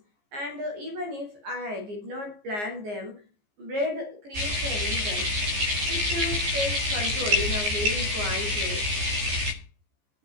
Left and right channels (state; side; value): late; left; 14 ms